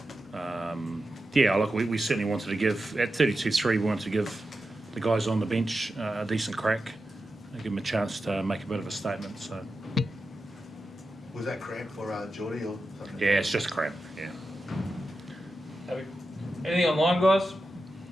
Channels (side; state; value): both; normal; correlation 0.90